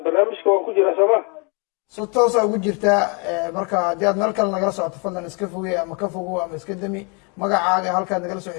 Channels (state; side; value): quieter; right; 33.4 dB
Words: barnaamijka waan ku jiraa sooma si toosa ugu jirtaa marka haddii aad meel kale nagala socoto fadlan iska foge ama ka fogo ama iska demi magacaaga halkaad nagala soo